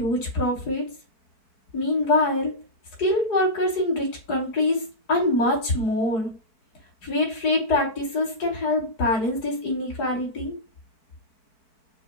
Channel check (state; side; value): late; right; 4.5 ms